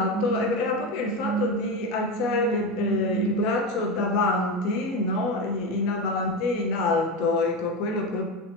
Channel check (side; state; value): both; normal; correlation 0.17